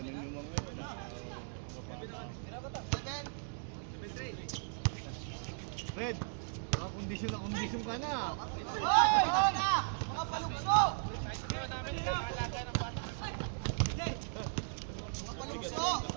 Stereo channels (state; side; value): silent; left; digital silence